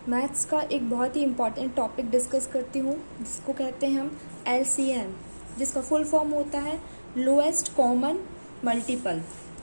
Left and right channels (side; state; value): both; inverted; correlation -1.00